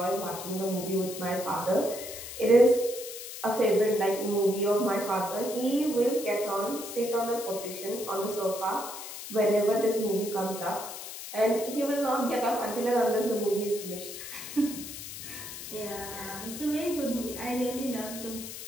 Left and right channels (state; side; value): noise; left; hiss, 10 dB below the sound